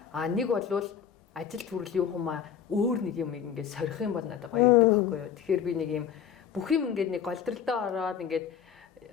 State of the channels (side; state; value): right; quieter; 8.4 dB